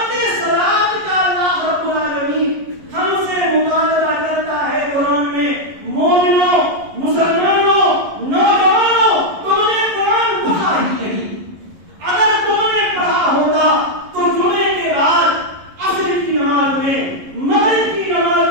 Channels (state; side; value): late; left; 11 ms